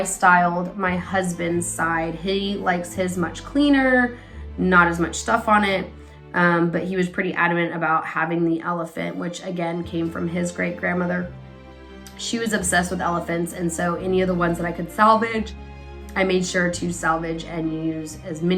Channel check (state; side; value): identical; both; correlation 1.00